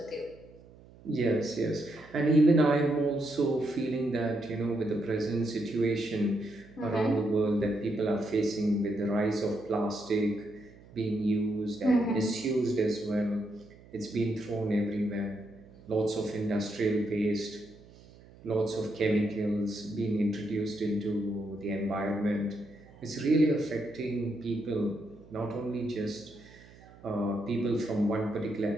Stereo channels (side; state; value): right; noise; hum, 23 dB below the sound